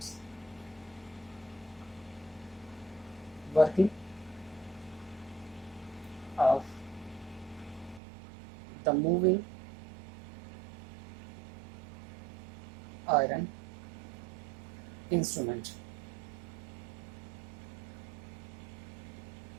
Working of the moving iron instrument.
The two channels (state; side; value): drops out; left; at 8.0 s